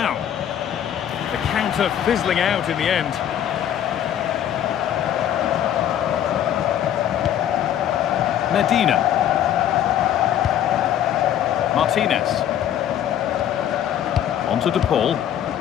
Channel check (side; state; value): right; quieter; 10.5 dB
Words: The counter fizzling out in the end. Medina. Martinez. On to De Paul.